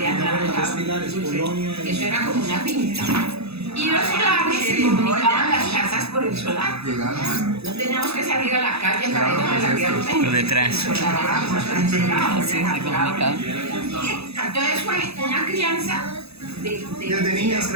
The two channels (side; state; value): left; late; 0.79 ms